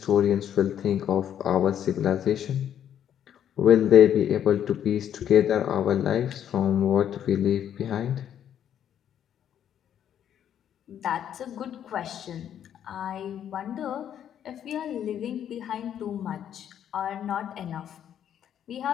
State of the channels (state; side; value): quieter; right; 9.7 dB